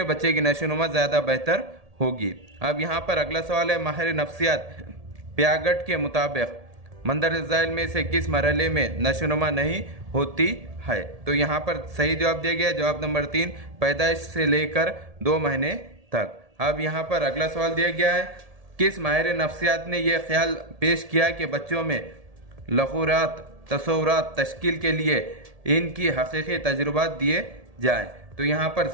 बच्चे की नशोनुमा ज़्यादा बेहतर होगी। अब यहाँ पर अगला सवाल है, माहिर नफ्सियात प्यागट के मुताबिक मंदरजा ज़ैल में से किस मरहले में नशोनुमा नहीं होती है। तो यहाँ पर सही जवाब दिया गया जवाब नंबर 3, पैदाइश से लेकर 2 महीने तक। अब यहाँ पर अगला सवाल दिया गया है, किस माहिर नफ्सियात ने यह ख्याल पेश किया कि बच्चों में लखूरात तसव्वुरात तश्कील के लिए इनकी हकीकी तजुर्बात दिए जाएं। तो यहाँ पर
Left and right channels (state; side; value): late; left; 1.7 ms